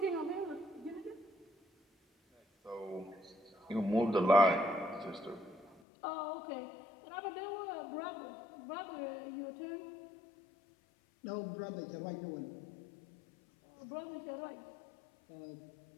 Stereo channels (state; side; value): drops out; right; at 5.8 s